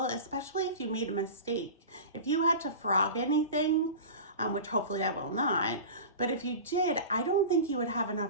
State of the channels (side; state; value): both; inverted; correlation -0.32